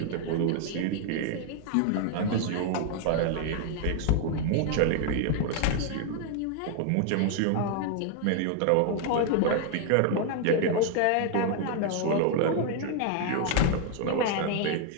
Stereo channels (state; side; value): different; both; correlation 0.00